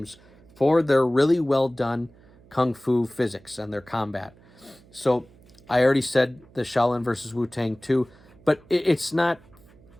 for their really well done kung fu physics and their combat. So I already said the Shaolin versus Wu-Tang 2, but it's not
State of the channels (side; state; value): right; noise; hum, 26 dB below the sound